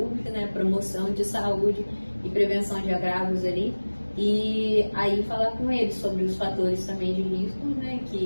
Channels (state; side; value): inverted; both; correlation -1.00